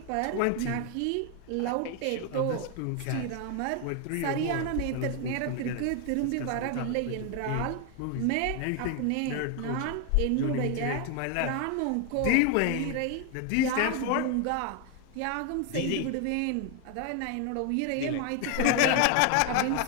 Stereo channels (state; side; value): different; both; correlation 0.01